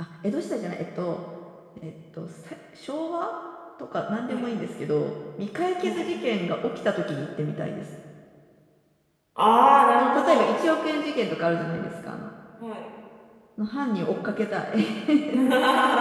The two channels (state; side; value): identical; both; correlation 1.00